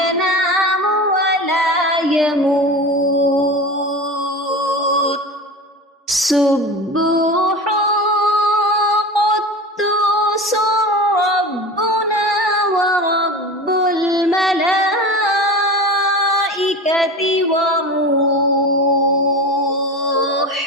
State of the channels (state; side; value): normal; both; correlation 0.30